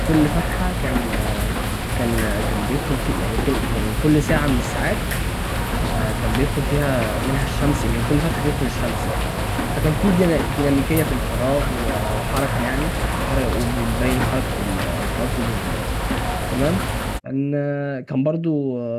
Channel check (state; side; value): identical; both; correlation 1.00